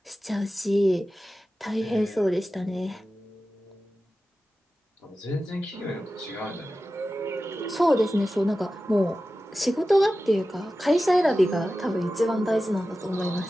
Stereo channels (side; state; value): both; normal; correlation 0.94